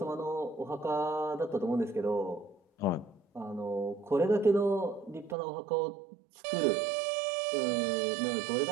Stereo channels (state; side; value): drops out; left; at 5.4 s